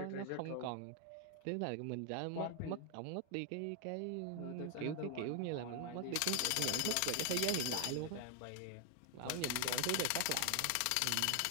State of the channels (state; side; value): different; both; correlation 0.00